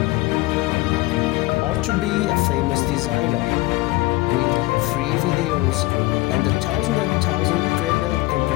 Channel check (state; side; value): quieter; right; 20.3 dB